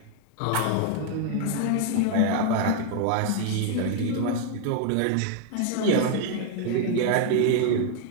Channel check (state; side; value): different; both; correlation 0.01